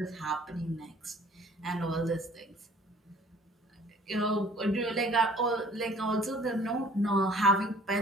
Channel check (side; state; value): both; normal; correlation 0.54